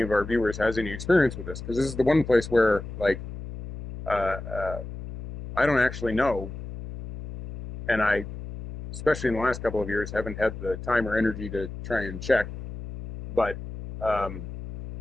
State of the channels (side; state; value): left; noise; hum, 10 dB below the sound